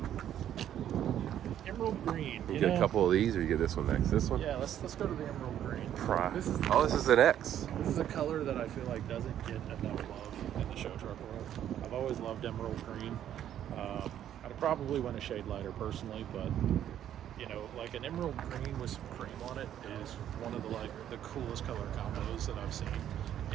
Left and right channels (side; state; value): left; quieter; 10.7 dB